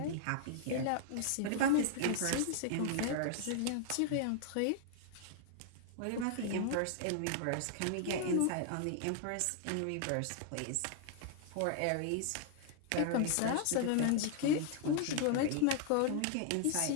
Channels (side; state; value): both; different; correlation 0.00